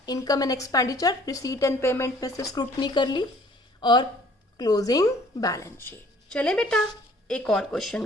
income and expenditure, receipt and payment में से स्क्रूटनी कर ली, और क्लोजिंग बैलेंस शीट। चले बेटा एक और क्वेश्चन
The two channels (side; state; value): both; normal; correlation 0.55